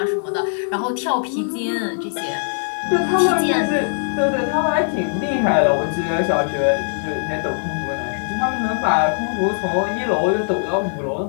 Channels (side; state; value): right; silent; 64 dB below the other